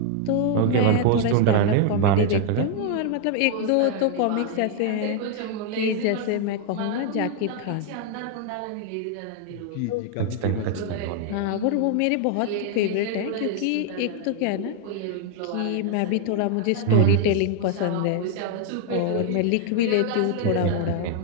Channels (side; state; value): both; different; correlation 0.00